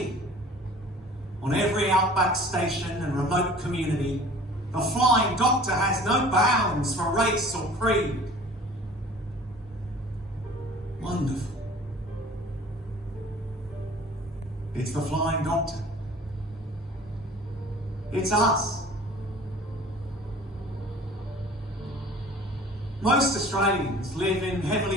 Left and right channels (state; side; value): normal; both; correlation 0.47